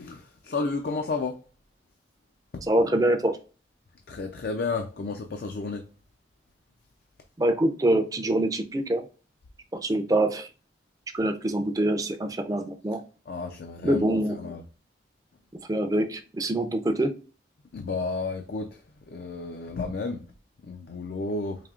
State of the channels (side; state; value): both; normal; correlation 0.65